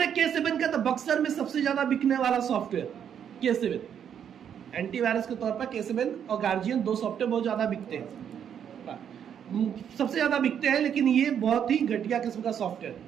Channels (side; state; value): left; quieter; 8.6 dB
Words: K7 का, तो बक्सर में सबसे ज्यादा बिकने वाला सॉफ्टवेयर K7, एंटीवायरस के तौर पर K7 और गार्जियन दो सॉफ्टवेयर बहुत ज्यादा बिकते हैं, सबसे ज्यादा बिकते हैं, लेकिन ये बहुत ही घटिया किस्म का